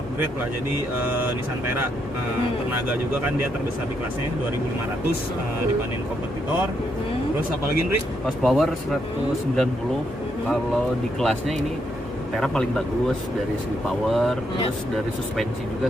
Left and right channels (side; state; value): both; normal; correlation 0.77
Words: lah jadi Nissan Terra. Tenaga juga kan dia terbesar di kelasnya 2500 dibanding kompetitor. Terus apalagi Nri? Horsepower 190. Kalau di kelasnya ini Terra paling bagus dari segi power, terus dari suspensi